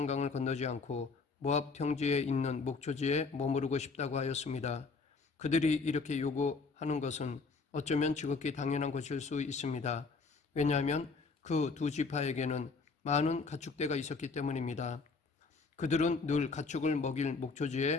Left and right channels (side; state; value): right; quieter; 4.4 dB